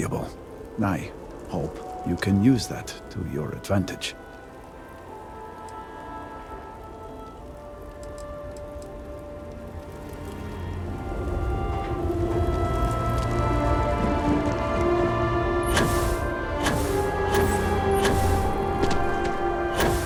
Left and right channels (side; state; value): both; identical; correlation 1.00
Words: I hope you can use that to your advantage.